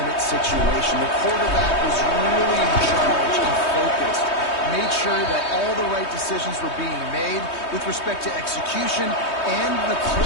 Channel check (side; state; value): right; late; 3.2 ms